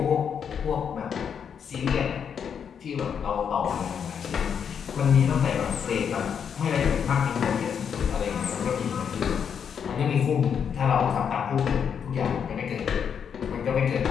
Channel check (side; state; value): right; quieter; 7.5 dB